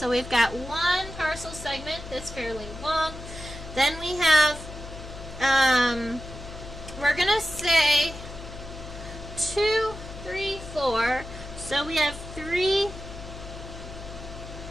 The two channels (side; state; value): left; noise; hum, 12 dB below the sound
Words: we've got one tarsal segment that's fairly long. Then we have, we're going to say 2, 3, 4. So we have 3